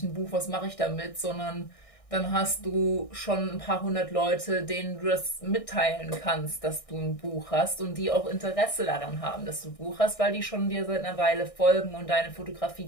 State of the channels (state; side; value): late; right; 1.6 ms